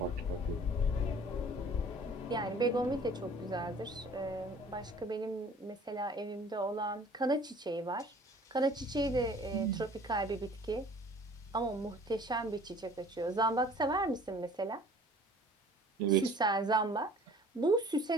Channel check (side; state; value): both; normal; correlation 0.50